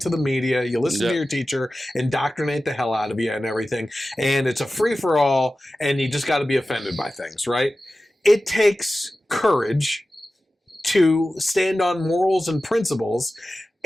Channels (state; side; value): normal; both; correlation 0.95